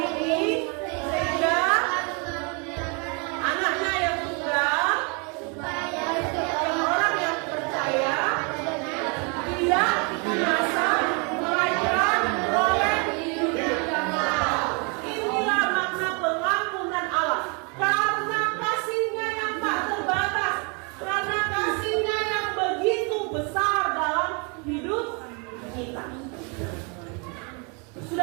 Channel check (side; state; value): left; quieter; 34.2 dB